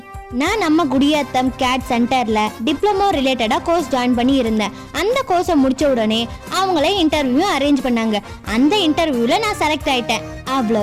நான் நம்ம குடியாத்தம் CADD சென்டரில் டிப்ளமோ ரிலேட்டடாக கோர்ஸ் ஜாயின் பண்ணி இருந்தேன். அந்த கோர்ஸை முடித்த உடனே அவங்களே இன்டர்வியூ அரேஞ்ச் பண்ணாங்க. அந்த இன்டர்வியூவில் நான் செலக்ட் ஆகிட்டேன்.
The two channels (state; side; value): identical; both; correlation 1.00